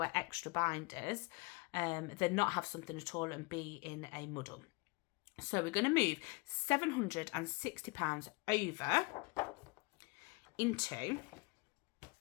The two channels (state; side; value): quieter; right; 27.9 dB